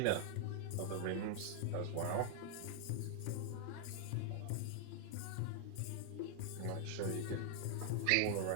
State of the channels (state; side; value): different; both; correlation 0.00